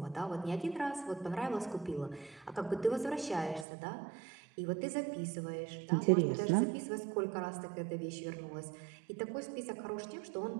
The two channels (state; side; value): drops out; left; at 3.7 s